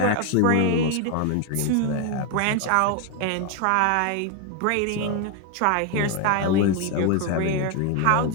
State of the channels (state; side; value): different; both; correlation 0.01